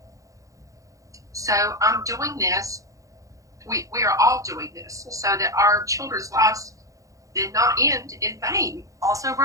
So I'm doing this. We are all doing this so that our children's lives did not end in vain.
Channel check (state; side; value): late; left; 0.16 ms